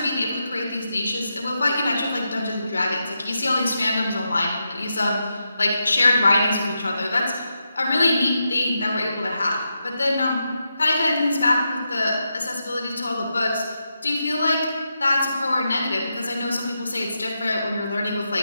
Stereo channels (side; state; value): both; inverted; correlation -0.86